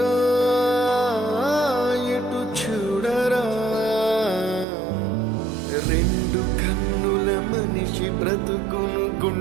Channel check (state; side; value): drops out; left; at 4.7 s